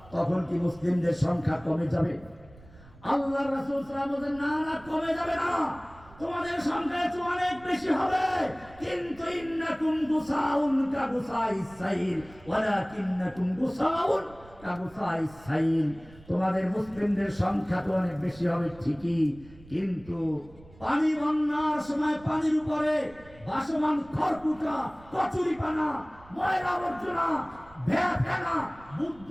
তখন কি মুসলিমদের সংখ্যা কমে যাবে? আল্লাহর রাসূল সাল্লাল্লাহু আলাইহি ওয়াসাল্লাম বলেন, না না, কমে যাবে না, তোমাদের সংখ্যা অনেক বেশি হবে। কিন্তু ইন্নাকুম গুসাউন কা গুসাইস সাইল ওয়ালাকিন্নাকুম গুসাউন কা গুসাইস সাইল। তোমাদের মুসলিমদের সংখ্যা তো অনেক বেশি হবে ঠিকই, কিন্তু পানি বন্যার সময় পানির উপরে ভাসমান খড়কুটা, কচুরিপানা, ময়লা আবর্জনা, ফেনা,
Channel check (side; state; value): right; noise; rumble, 23 dB below the sound